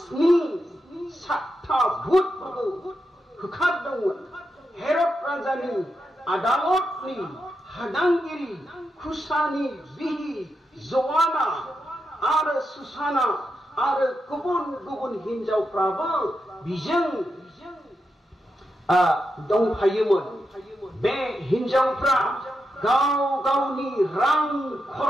7 भुतफोरखौ होखारदोंमोन हेरद राजानि आदालतनि हादांगिरि खुसानि बिहि जवाना आरो सुसाना आरो गुबुन हिनजावफ्राबो बिजों दंफायोमोन बे हिनजावफ्रा गावनि रां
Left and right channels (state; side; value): normal; both; correlation 0.86